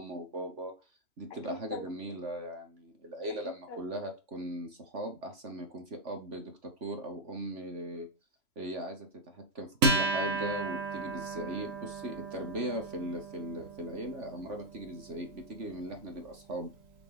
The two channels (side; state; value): left; late; 3.0 ms